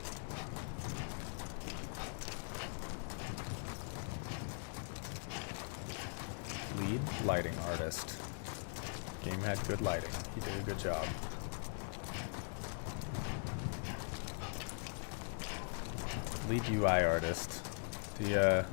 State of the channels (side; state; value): right; silent; 50 dB below the other